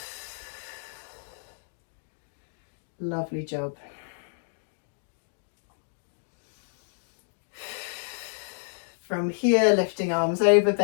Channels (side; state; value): right; silent; digital silence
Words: Lovely job. From here, lifting arms over,